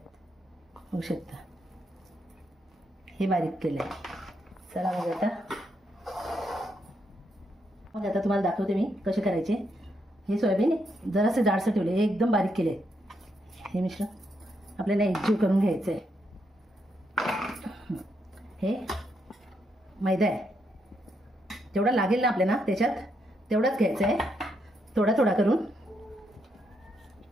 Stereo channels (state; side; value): normal; both; correlation 0.79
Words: बघू शकता, हे बारीक केलंय। चला मग आता तुम्हाला दाखवते मी कसे करायचे। हे सोयाबीन जरासे जाडसर ठेवले, हे एकदम बारीक केले। हे मिश्रण आपल्याला एकजीव करून घ्यायचं आहे। हे मैदा आहे, जेवढा लागेल ना आपल्याला त्याच्यात तेवढाच घ्यायचं आहे, थोडा थोडा करून।